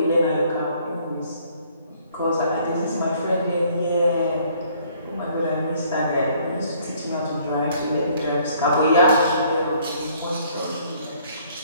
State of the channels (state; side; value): inverted; both; correlation -0.61